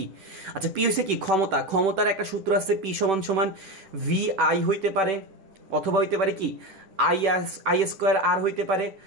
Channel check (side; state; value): left; late; 10 ms